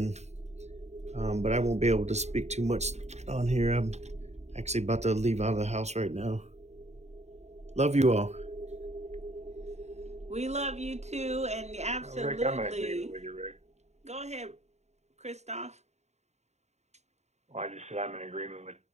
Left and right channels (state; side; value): late; left; 0.32 ms